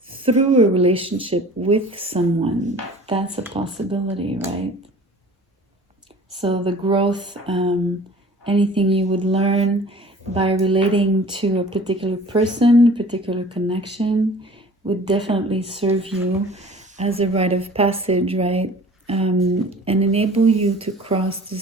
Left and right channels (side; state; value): both; normal; correlation 0.46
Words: through a relationship with someone. That's a possibility, right? So the growth, anything you would learn by relating to a particular person, particular connection, would definitely serve you as a rite of passage, right? And enable you to cross